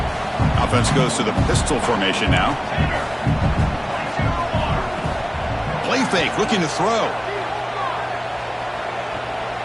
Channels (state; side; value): identical; both; correlation 1.00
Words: Offense goes to the pistol formation now. Play fake, looking to throw.